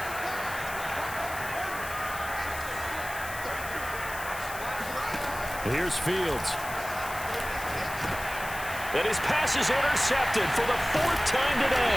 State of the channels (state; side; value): noise; left; hiss, 12 dB below the sound